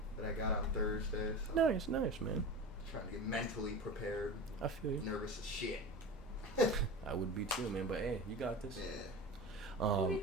that I got on Thursday. So Nice, man. Trying to get mentally prepared. I feel you. Nervous as shit. I would be too, man. But hey, you got this. Yeah.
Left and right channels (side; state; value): both; normal; correlation 0.30